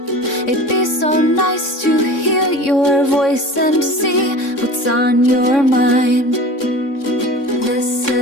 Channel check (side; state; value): right; late; 3.6 ms